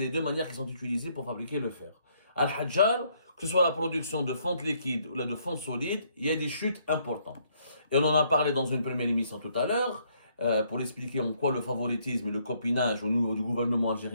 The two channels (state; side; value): inverted; both; correlation -0.69